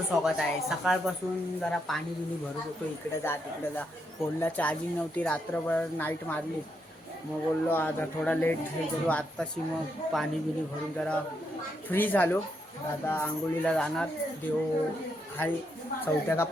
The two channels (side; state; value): both; normal; correlation 0.79